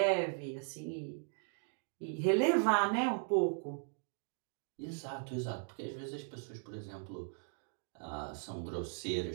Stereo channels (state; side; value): silent; left; 52 dB below the other